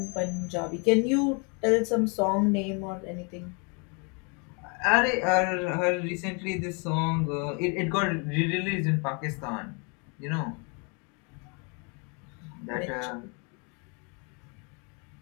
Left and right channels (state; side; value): quieter; right; 34.9 dB